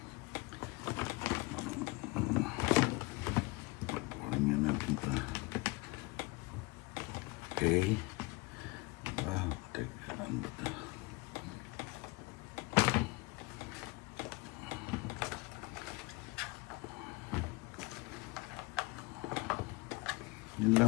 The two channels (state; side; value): quieter; right; 24.9 dB